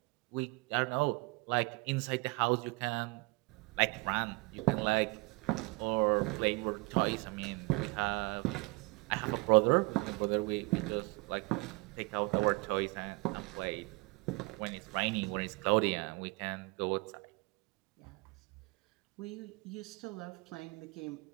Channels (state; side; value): quieter; left; 26.5 dB